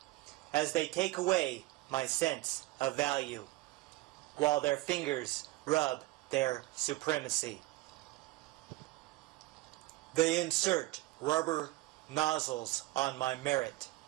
as they take away my sense of value, while their fingers rub their supremacy. They insert rubber nozzles on my merit,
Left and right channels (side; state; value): left; quieter; 18.9 dB